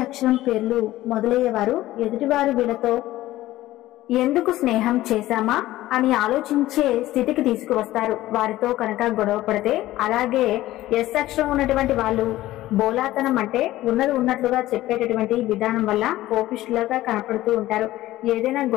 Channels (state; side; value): quieter; right; 15.8 dB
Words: అక్షరం పేర్లు మొదలయ్యేవారు ఎదుటివారు వీళ్ళతో ఎందుకు స్నేహం చేశామా అని ఆలోచించే స్థితికి తీసుకువస్తారు. వారితో కనుక గొడవ పడితే, అలాగే ఎస్ అక్షరం ఉన్నటువంటి వాళ్ళు బోలాతనం అంటే ఉన్నది ఉన్నట్లుగా చెప్పేటటువంటి విధానం వల్ల కోపిష్ఠులుగా కనపడుతూ ఉంటారు. ఏదైనా